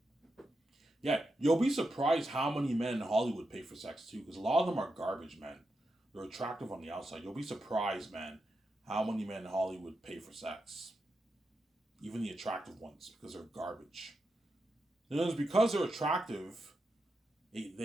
Yeah, you'll be surprised how many men in Hollywood pay for sex too, because a lot of them are garbage men. They're attractive on the outside. You'll be surprised, man, how many men in Hollywood pay for sex. Even the attractive ones, because they're garbage. And it's because they're attractive,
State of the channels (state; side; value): normal; both; correlation 0.87